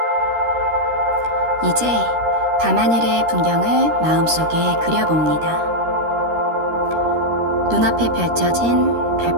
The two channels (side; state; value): left; late; 13 ms